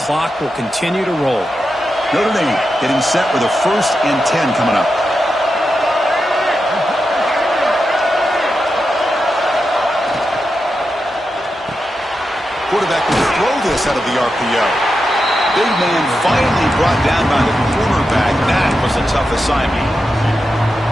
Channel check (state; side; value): normal; both; correlation 0.88